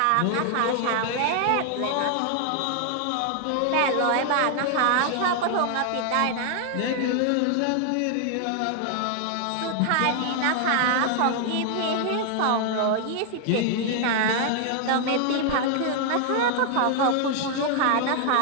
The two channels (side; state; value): both; different; correlation 0.00